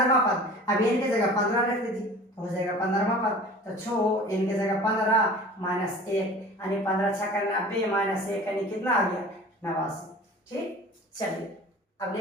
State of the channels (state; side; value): normal; both; correlation 0.41